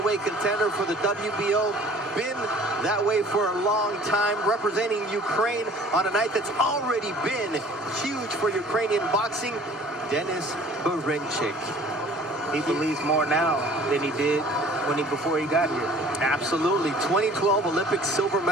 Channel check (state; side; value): normal; both; correlation 0.50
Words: contender for the WBO. Been that way for a long time, representing Ukraine on a night that's already been huge for Ukrainian boxing. Denis Berinchik. He believes more now than he did before he got here. Absolutely. 2012 Olympic silver